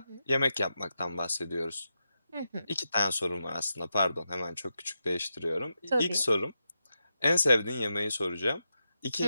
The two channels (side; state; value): both; inverted; correlation -0.88